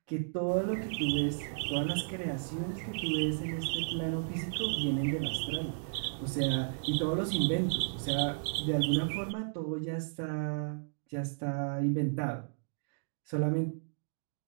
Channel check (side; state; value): left; silent; digital silence